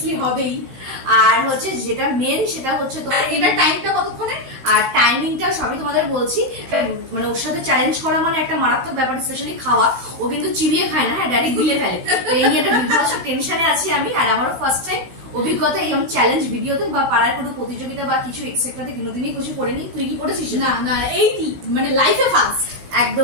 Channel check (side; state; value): left; late; 15 ms